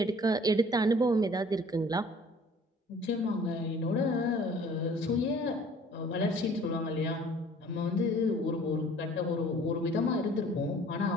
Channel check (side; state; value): both; normal; correlation 0.52